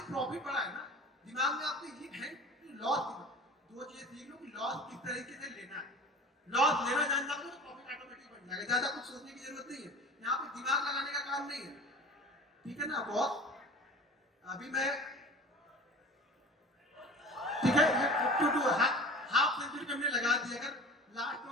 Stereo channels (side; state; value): both; normal; correlation 0.39